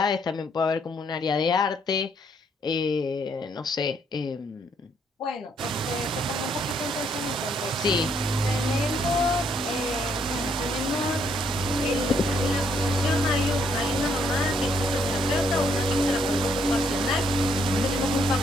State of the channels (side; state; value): both; normal; correlation 0.71